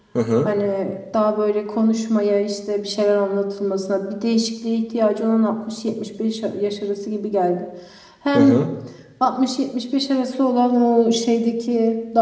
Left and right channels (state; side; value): identical; both; correlation 1.00